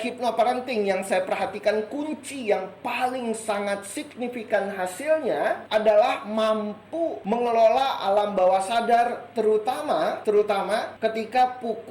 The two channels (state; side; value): identical; both; correlation 1.00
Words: yang saya perhatikan, kunci yang paling sangat signifikan hasilnya adalah mampu mengelola alam bawah sadar, terutama ketika